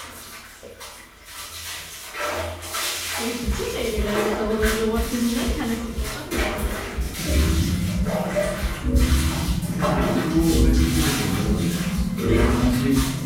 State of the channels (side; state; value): both; identical; correlation 1.00